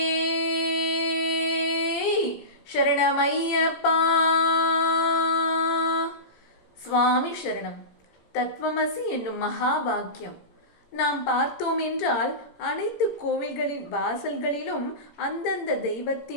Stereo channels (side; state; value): right; late; 17 ms